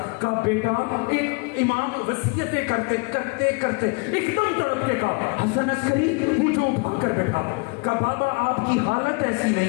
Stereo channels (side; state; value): right; quieter; 31.6 dB